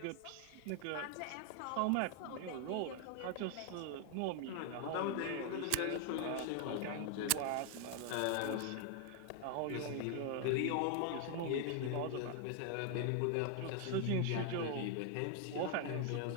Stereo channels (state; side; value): different; both; correlation 0.00